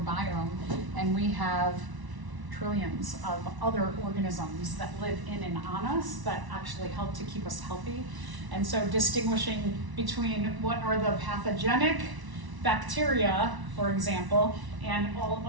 and we have trillions of other organisms that live in and on us that actually help to keep us healthy. And so distinguishing between what are the pathogenic bacteria, for example, and all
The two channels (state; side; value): late; left; 1.0 ms